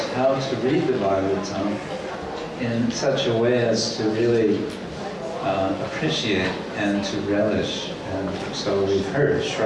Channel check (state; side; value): identical; both; correlation 1.00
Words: how to read the Bhagavatam in such a way as to really appreciate and to relish. And so we've heard